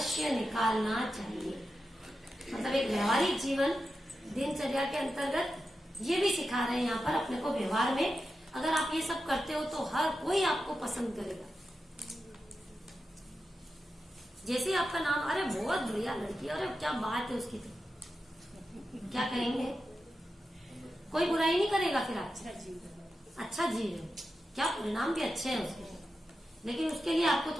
निकालना चाहिए। मतलब एक व्यवहारिक जीवन, दिनचर्या के अंतर्गत ये भी सिखा रहे हैं यहाँ पर अपने को। व्यवहार में अगर आप ये सब करते हो तो हर कोई आपको पसंद करेगा। जैसे आपका नाम, अरे बहुत बढ़िया लड़की, अरे क्या बात है उसकी, तो क्या कहेंगे, कोई बुराई नहीं करेगा फिर आप। अच्छा जीव है, क्या परिणाम भी अच्छे हैं उसके, लेकिन उसके लिए आपको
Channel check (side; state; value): both; normal; correlation 0.90